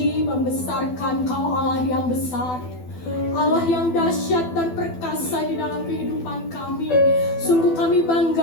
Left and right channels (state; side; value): late; right; 12 ms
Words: membesarkan Kau Allah yang besar, Allah yang dahsyat dan perkasa di dalam kehidupan kami. Sungguh kami